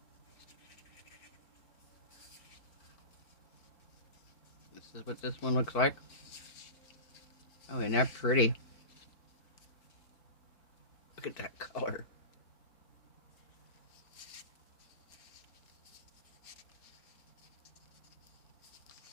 This is what this one looks like. Oh, isn't that pretty? Look at that color.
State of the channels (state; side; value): late; right; 4.5 ms